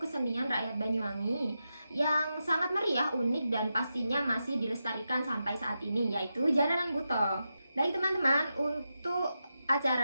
rakyat Banyuwangi yang sangat meriah, unik, dan pastinya masih dilestarikan sampai saat ini, yaitu Jaranan Buto. Baik teman-teman, untuk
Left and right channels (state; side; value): inverted; both; correlation -0.89